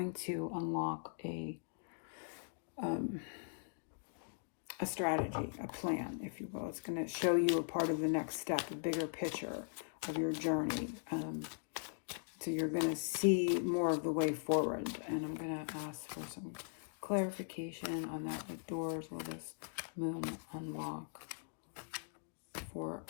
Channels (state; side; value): silent; right; digital silence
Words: to unlock a strategy, a plan, if you will. It's going to show you a part of the next step, a bigger picture of your journey. So you're going to see more of the way forward. And I'm going to ask for some clarification on that. What doors will this moon unlock for